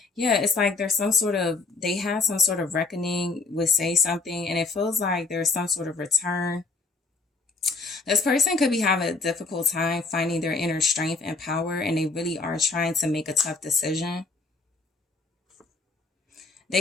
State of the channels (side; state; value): right; quieter; 3.7 dB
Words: Yeah, it's like there's they have some sort of reckoning with say something, and it feels like there's some sort of return. This person could be having a difficult time finding their inner strength and power, and they really are trying to make a tough decision.